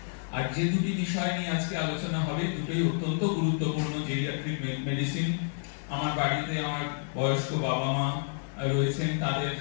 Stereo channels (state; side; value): silent; right; digital silence